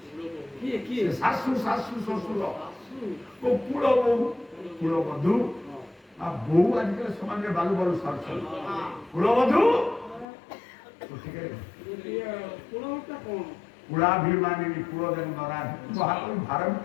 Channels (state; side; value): drops out; right; at 10.2 s